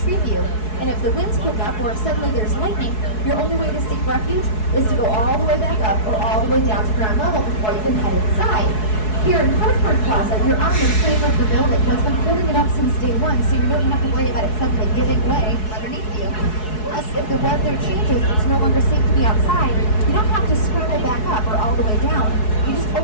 you. And if the winds pick up or if suddenly there's lightning, your only way to seek refuge is to go all the way back up or all the way down to ground level before you can head inside. Here in Hartford Plaza, you're on the frame of the building. What's been holding it up since day one, so you don't have to worry about it suddenly giving way from underneath you. Plus, if the weather changes, it's no longer safe to be outside, you don't have to scramble back up or all the way down. You just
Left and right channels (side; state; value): right; late; 4.7 ms